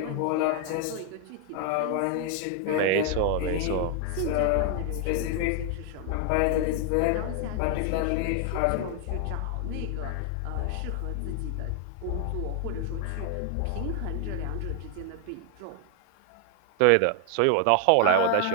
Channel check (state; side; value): different; both; correlation 0.00